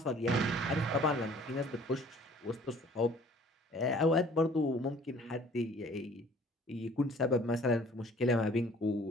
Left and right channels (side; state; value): both; normal; correlation 0.53